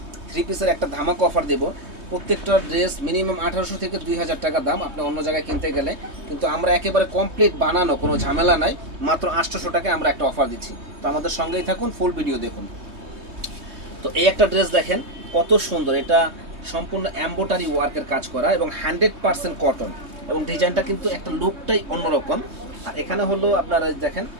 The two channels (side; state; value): left; late; 3.2 ms